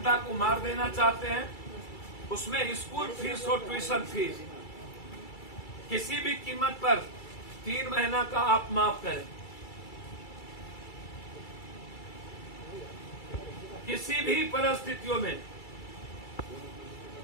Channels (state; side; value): late; right; 2.3 ms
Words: को मार देना चाहते हैं? उसमें स्कूल फीस और ट्यूशन फीस किसी भी कीमत पर 3 महीना का आप माफ करें। किसी भी परिस्थितियों में